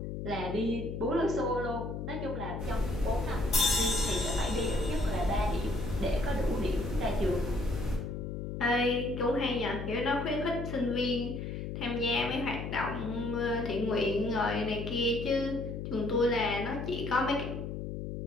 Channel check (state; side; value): noise; left; hum, 5 dB below the sound